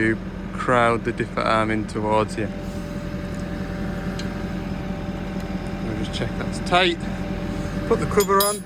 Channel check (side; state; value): both; identical; correlation 1.00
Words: crowd the dipper arm in towards you. We'll just check that's tight, put the cover on,